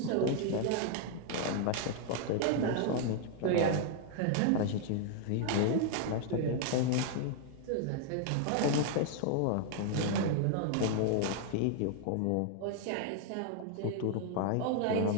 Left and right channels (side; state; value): both; different; correlation 0.00